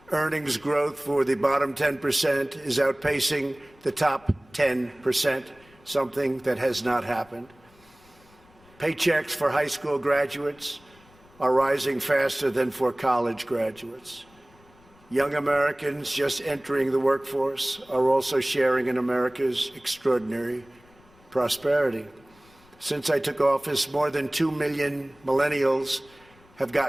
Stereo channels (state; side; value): noise; left; rumble, 28 dB below the sound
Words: Earnings growth for the bottom 10% is outpacing the top 10%, something that has not happened. Paychecks for high school graduates are rising faster than for college graduates. Young Americans just entering the workforce are also sharing in America's extraordinary prosperity. Since I took office, more than 2 million millennials have